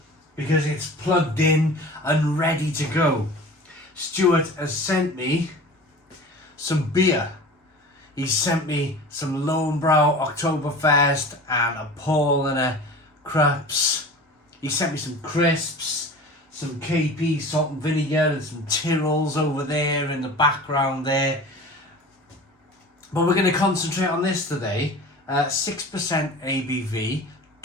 because it's plugged in and ready to go. Stuart has sent me some beer. He sent me some Paulaner Oktoberfest and a Paulaner Krups. He sent me some crisps, some KP salt and vinegar and some Tyrrells over there in the background there. But we're going to concentrate on this today. 6% ABV,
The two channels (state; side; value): normal; both; correlation 0.38